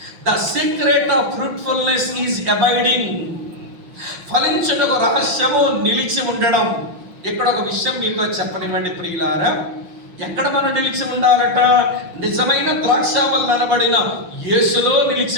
The secret of fruitfulness is abiding. ఫలించుటకు రహస్యము నిలిచి ఉండడం. ఇక్కడ ఒక విషయం మీతో చెప్పనివ్వండి ప్రియులారా. ఎక్కడ మనం నిలిచి ఉండాలట? నిజమైన ద్రాక్షావల్లి అనబడిన యేసులో నిలిచి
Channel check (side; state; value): left; late; 5.6 ms